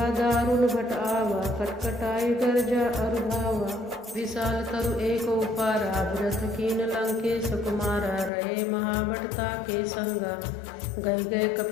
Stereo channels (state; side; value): drops out; right; at 8.3 s